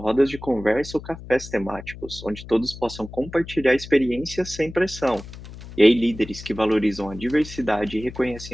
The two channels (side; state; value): left; noise; hum, 14 dB below the sound